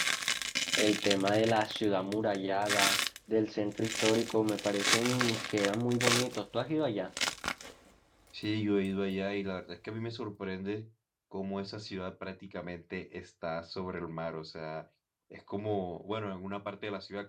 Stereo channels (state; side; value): identical; both; correlation 1.00